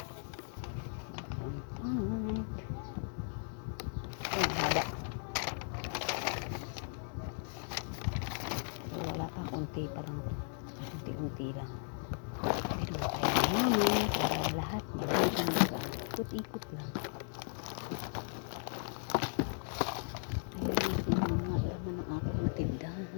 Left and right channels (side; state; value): right; silent; 53 dB below the other